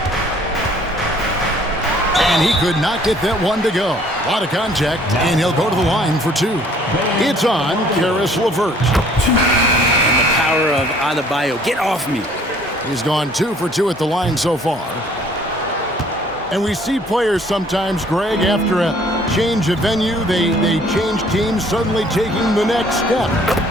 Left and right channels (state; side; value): normal; both; correlation 0.58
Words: And he could not get that one to go. A lot of contact, and he'll go to the line for two. It's on Caris LeVert. And the power of Adebayo. Get off me. He's gone 2 for 2 at the line so far. And we see players sometimes, Greg, after a change of venue, they change teams, suddenly taking the next step.